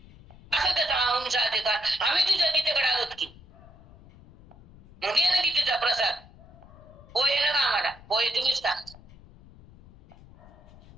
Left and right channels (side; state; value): left; noise; rumble, 22 dB below the sound